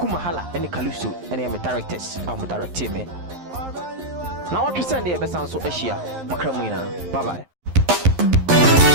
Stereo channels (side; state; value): left; late; 11 ms